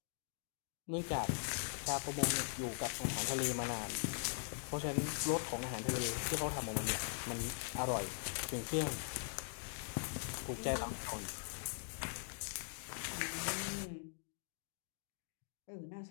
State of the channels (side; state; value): right; silent; digital silence